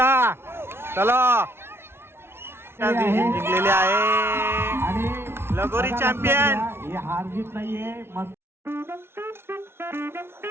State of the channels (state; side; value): late; left; 0.12 ms